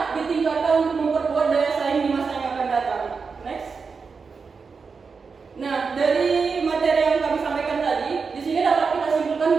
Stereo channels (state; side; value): quieter; left; 5.1 dB